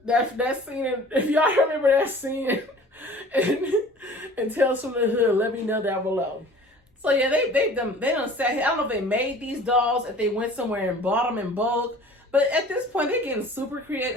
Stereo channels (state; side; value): normal; both; correlation 0.46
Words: that scene. If y'all remember that scene and Tales from the Hood, let me know down below. So yeah, they done sat here. I don't know if they made these dolls, if they went somewhere and bought them in bulk, but at this point they're getting super creative.